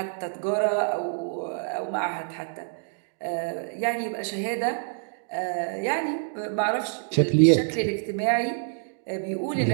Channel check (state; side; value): silent; left; digital silence